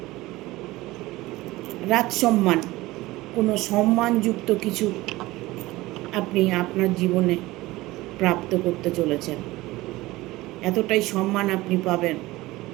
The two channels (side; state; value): left; quieter; 19.1 dB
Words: রাজসম্মান, কোনো সম্মানযুক্ত কিছু আপনি আপনার জীবনে প্রাপ্ত করতে চলেছেন। এতটাই সম্মান আপনি পাবেন,